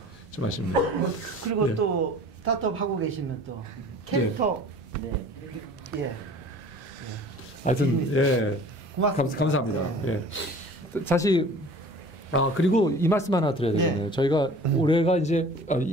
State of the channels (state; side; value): normal; both; correlation 0.45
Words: 좀 아쉽네요. 그리고 또 스타트업 하고 계시면 또 캐릭터 하여튼 감사합니다. 사실 그리고 이 말씀 하나 드려야 되겠네요. 저희가 올해가 이제